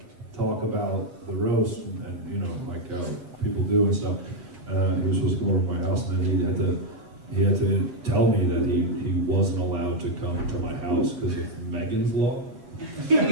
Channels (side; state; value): left; late; 8.0 ms